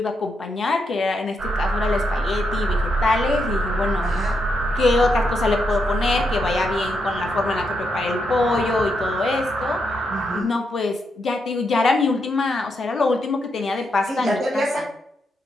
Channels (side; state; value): both; normal; correlation 0.81